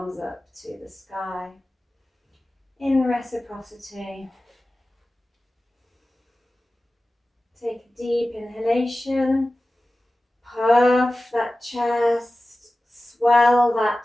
up to the sky. In reciprocity. Take a deep inhalation. Puff that chest. Swell that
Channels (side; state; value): both; normal; correlation 0.96